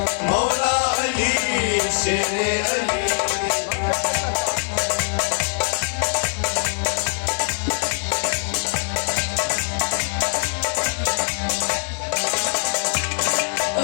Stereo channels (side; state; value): right; silent; digital silence